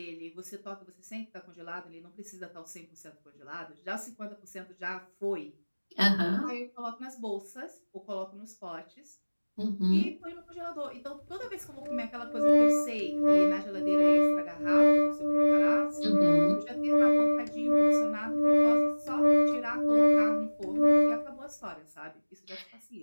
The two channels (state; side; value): inverted; both; correlation -1.00